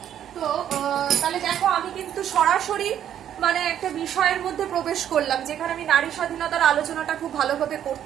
তো তাহলে দেখো আমি কিন্তু সরাসরি মানে একটা বিষয়ের মধ্যে প্রবেশ করলাম যেখানে আমি নারী স্বাধীনতার আলোচনাটা খুব ভালোভাবে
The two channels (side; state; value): left; quieter; 10.2 dB